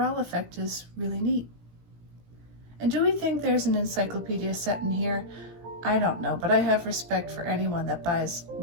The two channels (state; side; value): late; left; 18 ms